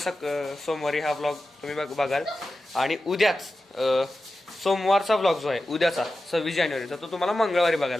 सोमवारी हा ब्लॉग तुम्ही बघाल. आणि उद्याच सोमवारचा ब्लॉग जो आहे उद्याचा 26 जानेवारीचा तो तुम्हाला मंगळवारी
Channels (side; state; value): both; normal; correlation 0.93